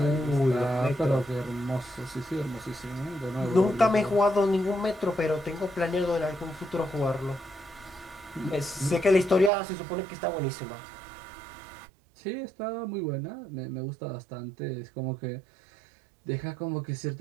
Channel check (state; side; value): drops out; left; at 9.5 s